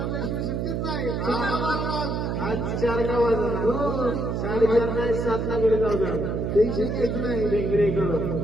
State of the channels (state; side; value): noise; right; hum, 1 dB below the sound